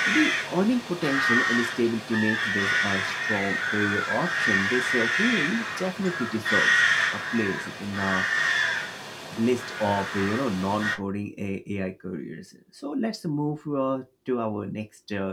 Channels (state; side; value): identical; both; correlation 1.00